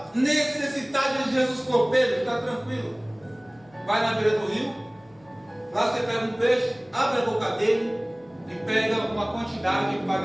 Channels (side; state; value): left; noise; hum, 29 dB below the sound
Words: necessitado de Jesus falou: Pedro, fica tranquilo, vai na beira do rio, lá você pega um peixe, abre a boca dele e pega uma quantidade e